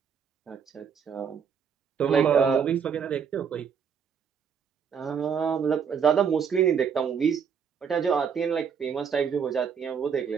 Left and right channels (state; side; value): quieter; left; 7.0 dB